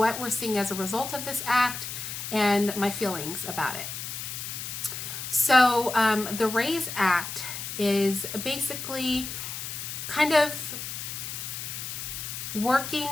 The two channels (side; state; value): left; noise; hiss, 6 dB below the sound